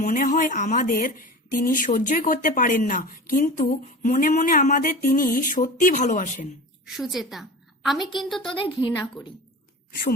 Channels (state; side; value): normal; both; correlation 0.33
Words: মনে হয় আমাদের তিনি সহ্যই করতে পারেন না, কিন্তু মনে মনে আমাদের তিনি সত্যি ভালোবাসেন। সুচেতা, আমি কিন্তু তোদের ঘৃণা করি।